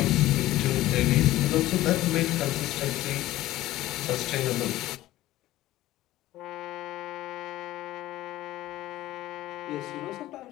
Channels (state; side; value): quieter; right; 15.7 dB